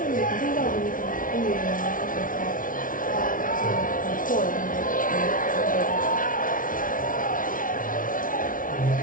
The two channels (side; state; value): right; late; 0.39 ms